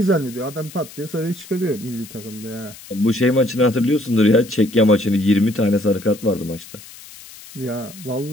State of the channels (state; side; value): noise; left; hiss, 18 dB below the sound